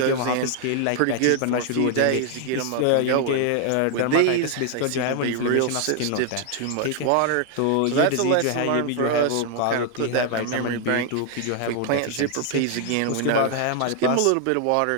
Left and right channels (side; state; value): both; different; correlation 0.00